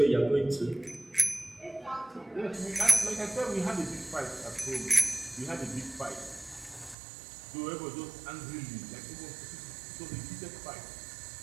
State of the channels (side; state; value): left; drops out; at 7.0 s